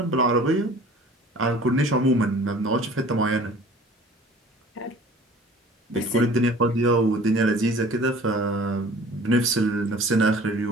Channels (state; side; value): normal; both; correlation 0.47